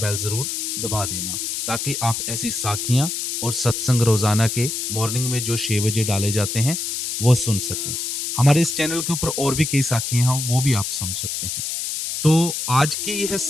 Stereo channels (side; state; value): left; noise; hiss, 3 dB below the sound